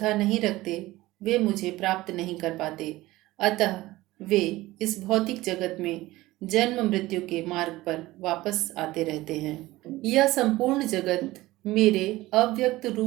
नहीं रखते, वे मुझे प्राप्त नहीं कर पाते, अतः वे इस भौतिक जगत में जन्म मृत्यु के मार्ग पर वापस आते रहते हैं। यह संपूर्ण जगत मेरे अव्यक्त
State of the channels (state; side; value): quieter; left; 18.1 dB